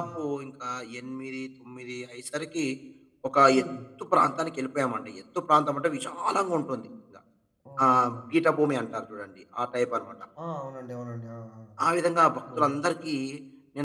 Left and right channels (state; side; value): identical; both; correlation 1.00